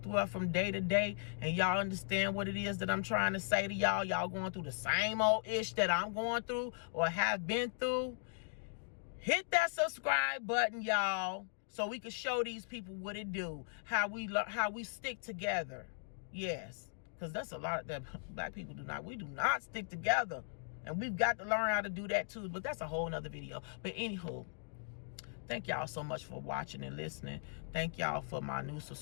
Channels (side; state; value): right; silent; digital silence